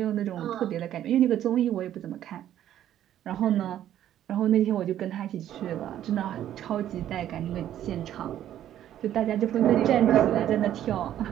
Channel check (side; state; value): left; quieter; 11.5 dB